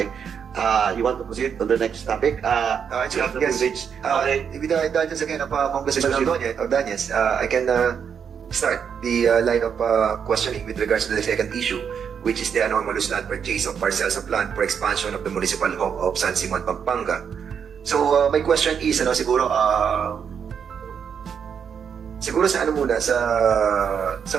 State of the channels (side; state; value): left; quieter; 7.3 dB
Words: You want to proceed on the next topic? Yes. Okay. With the indulgence again of Congressman Ordonez, I can start the line of questioning with regards to the second issue, which is the anomalous land purchase of parcels of land for expansion of the municipal home of San Simon, Pampanga. So, my question is, siguro sa ano muna, sa